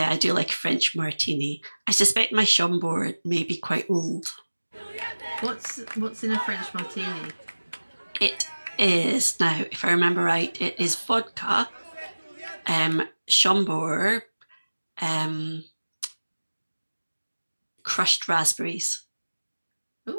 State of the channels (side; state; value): both; inverted; correlation -1.00